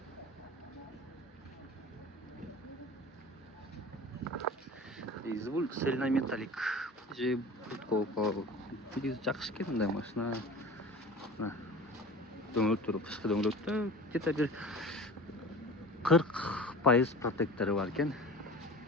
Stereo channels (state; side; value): normal; both; correlation 0.38